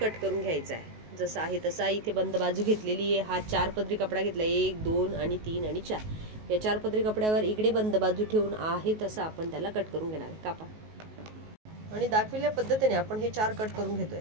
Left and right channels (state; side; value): late; left; 19 ms